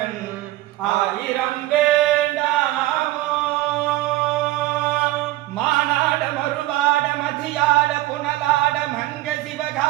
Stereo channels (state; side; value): quieter; left; 16.9 dB